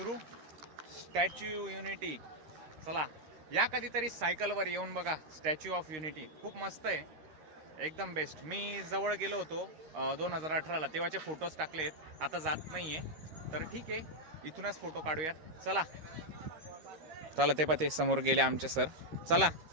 स्टॅच्यू युनिटी, चला या कधीतरी सायकलवर येऊन बघा स्टॅच्यू ऑफ युनिटी, खूप मस्त आहे, एकदम बेस्ट. मी जवळ गेलो होतो 2018ला, तेव्हाचे फोटोज टाकलेत, आता जात नाही आहे. तर ठीक आहे, इथूनच फोटो काढूयात. चला चला, ते समोर गेले आमचे सर. चला,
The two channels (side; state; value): left; late; 13 ms